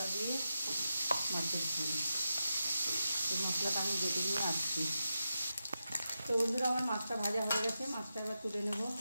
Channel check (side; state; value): both; inverted; correlation -0.89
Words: দিয়ে মাছের ঝোল। এই মশলাটা আমি বেটে নিয়ে আসছি। তো বন্ধুরা আমার মাছটা ভাজা হয়ে গেছে। মাছটা এবার তুলে নেব।